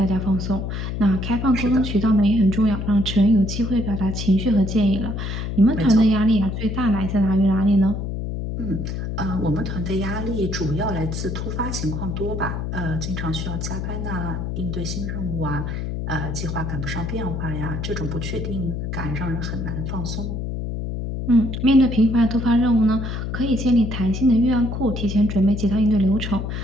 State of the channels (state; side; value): noise; left; hum, 4 dB below the sound